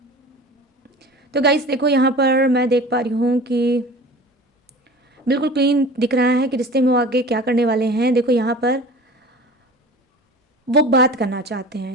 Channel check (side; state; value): both; normal; correlation 0.39